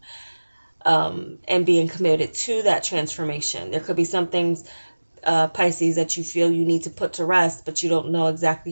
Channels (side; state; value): both; inverted; correlation -1.00